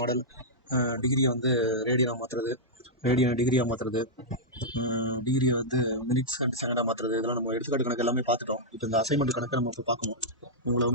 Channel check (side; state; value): both; normal; correlation -0.08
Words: டிகிரியை வந்து ரேடியனாக மாற்றுறது, ரேடியனை டிகிரியாக மாற்றுறது, டிகிரியை வந்து மினிட்ஸ் அண்ட் செகண்டாக மாற்றுறது, இதெல்லாம் நம்ம எடுத்துக்காட்டு கணக்கு எல்லாமே பார்த்துட்டோம். இப்போ இந்த அசைன்மெண்ட் கணக்கை நம்ம இப்போ பார்க்கணும். உங்களை